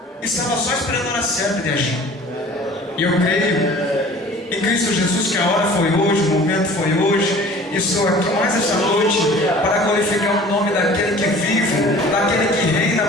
estava só esperando a hora certa de agir. E eu creio em Cristo Jesus que a hora foi hoje, o momento foi hoje. E estou aqui mais essa noite para glorificar o nome daquele que vive, daquele que reina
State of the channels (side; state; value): both; normal; correlation 0.46